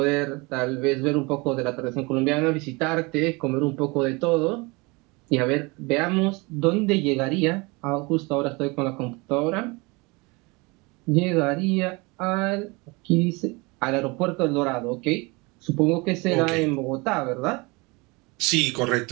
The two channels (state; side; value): quieter; left; 26.3 dB